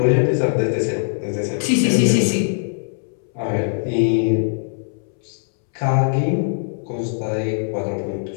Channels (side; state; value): right; silent; 65 dB below the other